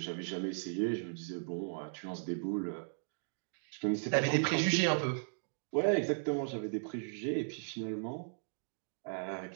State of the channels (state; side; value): silent; left; digital silence